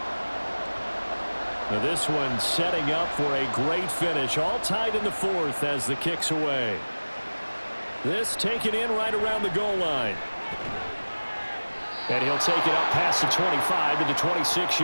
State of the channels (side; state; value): both; inverted; correlation -1.00